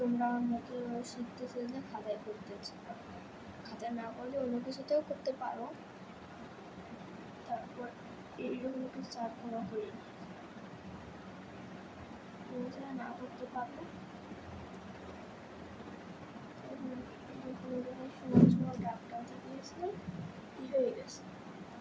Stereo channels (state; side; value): identical; both; correlation 1.00